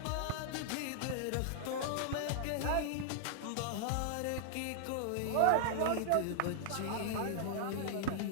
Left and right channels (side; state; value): both; different; correlation -0.01